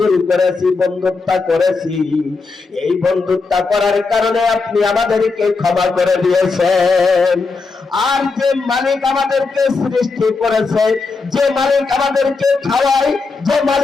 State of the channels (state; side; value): quieter; right; 4.2 dB